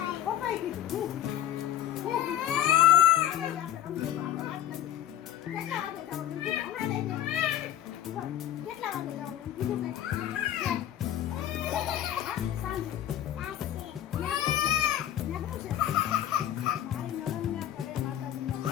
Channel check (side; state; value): right; quieter; 11.7 dB